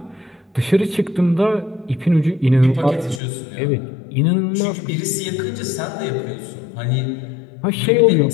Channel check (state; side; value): drops out; right; at 3.2 s